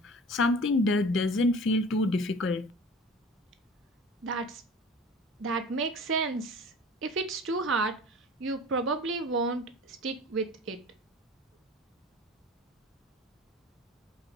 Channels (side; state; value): both; normal; correlation 0.40